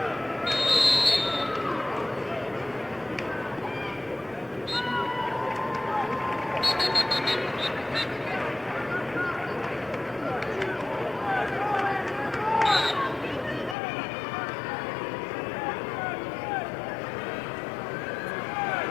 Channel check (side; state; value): right; drops out; at 13.8 s